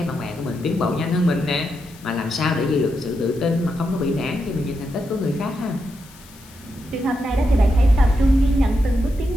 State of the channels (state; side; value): noise; left; hiss, 23 dB below the sound